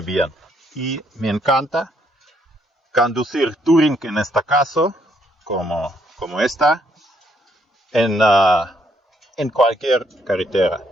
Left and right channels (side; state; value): both; normal; correlation 0.71